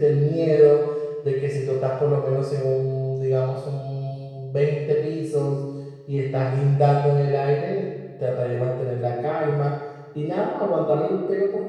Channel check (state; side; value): identical; both; correlation 1.00